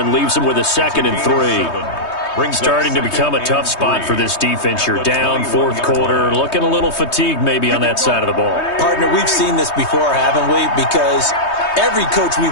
leaves them with a 2nd and 3. Starting to become a tough spot for this defense. You're down, 4th quarter, looking a little fatigued maybe on that side of the ball. Partner, we've seen this before, haven't we? Because every coach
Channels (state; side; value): late; right; 3.2 ms